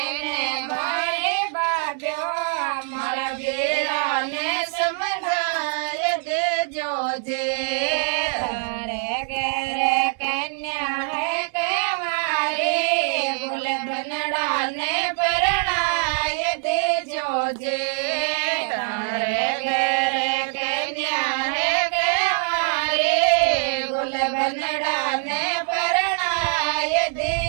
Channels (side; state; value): left; silent; 57 dB below the other